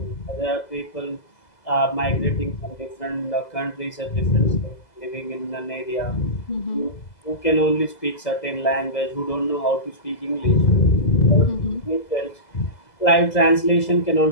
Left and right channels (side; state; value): right; late; 2.0 ms